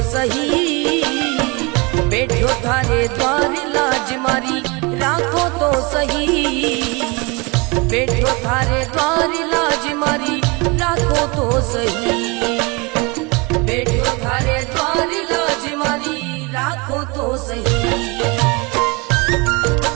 सही, बैठो थारे द्वार लाज मारी राखो तो सही, बैठो थारे द्वार लाज मारी राखो तो सही, बैठो थारे द्वार लाज मारी राखो तो सही।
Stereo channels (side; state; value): left; quieter; 28.0 dB